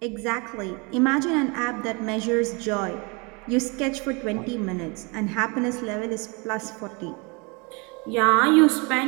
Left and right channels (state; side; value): quieter; left; 29.6 dB